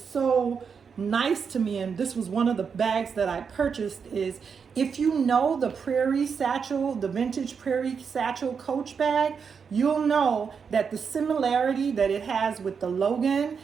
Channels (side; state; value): left; quieter; 6.2 dB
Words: nice to me, and this was one of the bags that I purchased, is if you know the Prairie Satchel, the vintage Prairie Satchel Coach bag, you'll know that the similarity that it has with the Logan